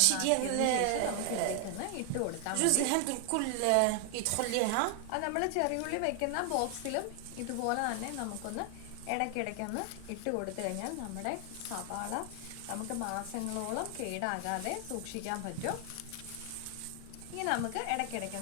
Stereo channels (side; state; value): both; different; correlation 0.00